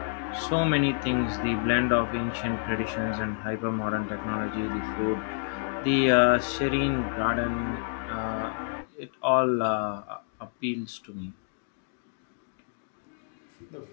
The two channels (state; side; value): silent; right; digital silence